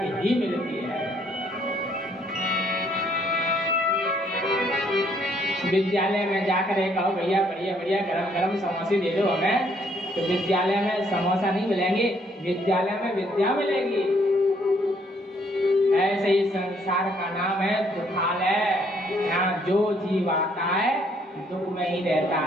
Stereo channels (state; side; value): normal; both; correlation 0.67